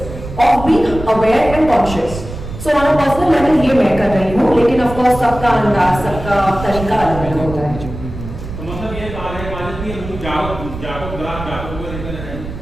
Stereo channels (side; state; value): right; noise; rumble, 10 dB below the sound